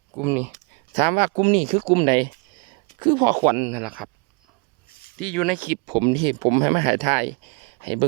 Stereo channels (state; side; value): quieter; left; 33.0 dB